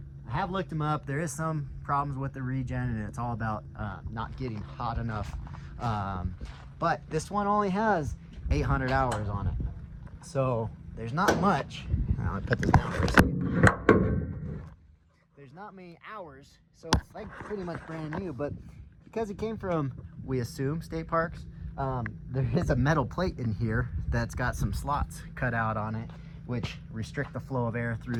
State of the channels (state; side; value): identical; both; correlation 1.00